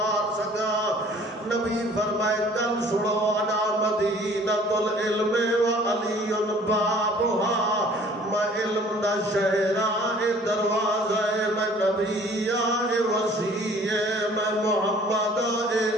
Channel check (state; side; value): normal; both; correlation 0.53